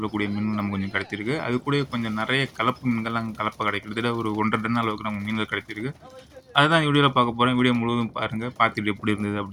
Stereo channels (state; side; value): identical; both; correlation 1.00